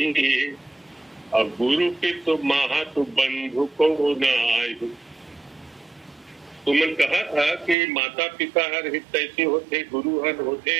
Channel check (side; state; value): left; drops out; at 7.8 s